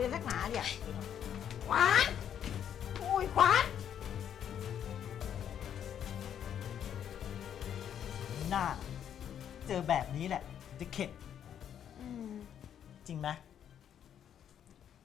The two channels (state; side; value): quieter; right; 9.3 dB